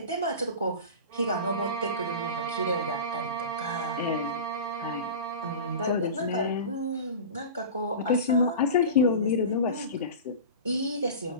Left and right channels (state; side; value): inverted; both; correlation -0.30